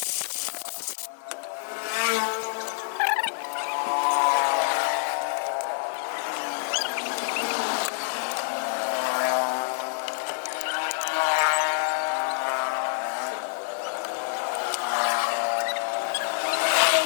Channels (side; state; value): right; silent; digital silence